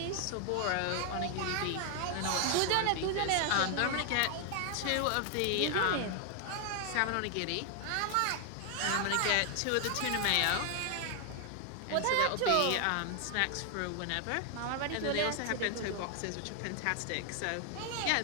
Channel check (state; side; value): different; both; correlation 0.00